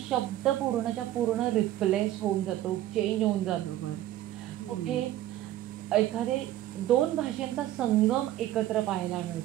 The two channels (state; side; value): quieter; left; 13.7 dB